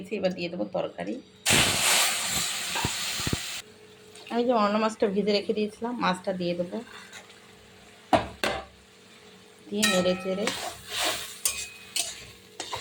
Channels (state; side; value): identical; both; correlation 1.00